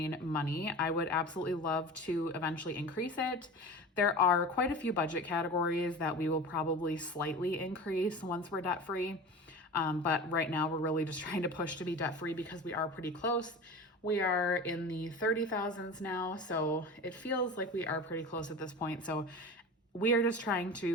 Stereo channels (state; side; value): normal; both; correlation 0.32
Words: money, I would absolutely love to eventually increase it. There are quite a few budget categories that we will probably slightly increase once we're debt free. But right now we're really just trying to push to be debt free because we are pretty close. We are in the 30,000s now, so it feels like we are pretty close at this point. So we are just trying